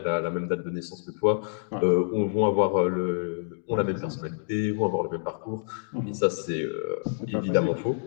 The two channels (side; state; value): right; silent; digital silence